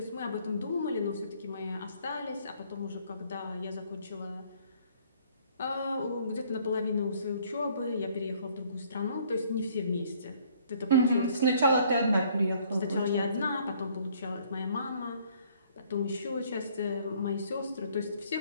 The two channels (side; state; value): both; inverted; correlation -0.61